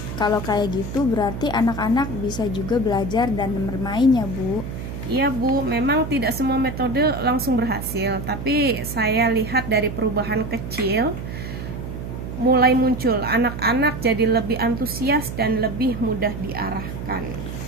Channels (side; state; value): right; noise; hum, 7 dB below the sound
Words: kalau kayak gitu berarti anak-anak bisa juga belajar dan bermain ya Bu. Iya, Bu, memang tidak semua metode langsung berhasil, tapi saya lihat dari perubahan kecil mulai muncul. Anak-anak jadi lebih antusias dan lebih mudah diarahkan.